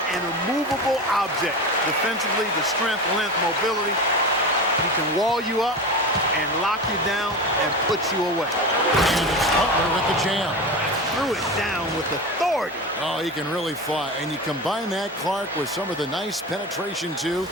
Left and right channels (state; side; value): normal; both; correlation 0.26